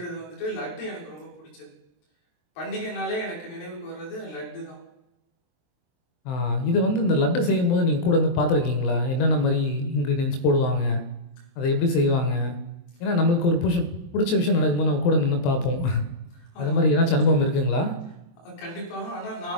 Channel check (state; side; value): late; right; 23 ms